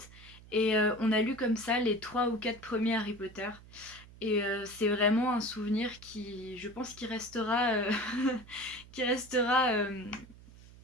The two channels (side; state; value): right; noise; hum, 20 dB below the sound